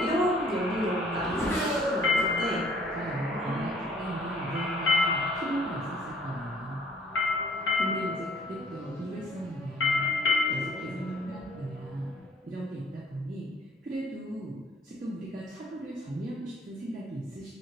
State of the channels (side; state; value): both; normal; correlation 0.57